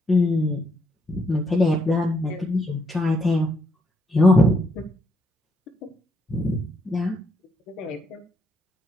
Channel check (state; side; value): normal; both; correlation 0.76